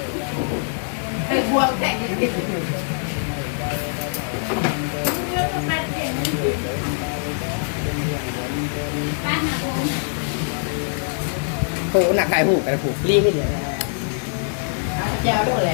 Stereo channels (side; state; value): right; silent; digital silence